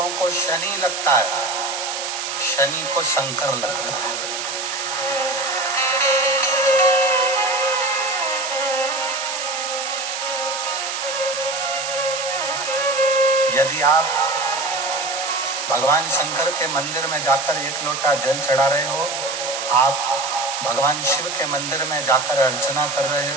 को शनि लगता है, शनि को शंकर लगता है। यदि आप भगवान शंकर के मंदिर में जाकर 1 लोटा जल चढ़ा रहे हो, आप भगवान शिव के मंदिर में जाकर अर्चना कर रहे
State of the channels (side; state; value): right; noise; hiss, 4 dB below the sound